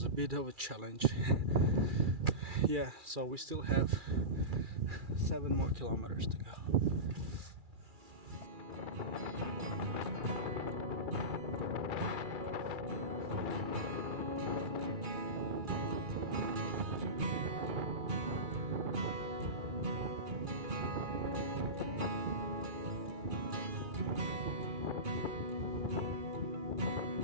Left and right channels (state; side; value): late; left; 2.3 ms